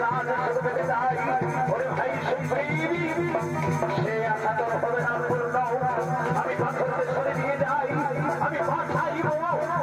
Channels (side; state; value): both; identical; correlation 1.00